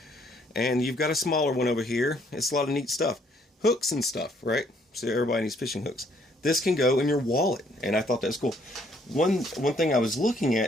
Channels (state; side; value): normal; both; correlation 0.66